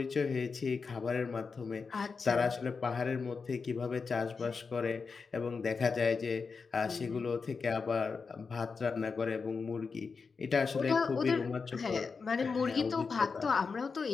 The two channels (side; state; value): right; quieter; 5.0 dB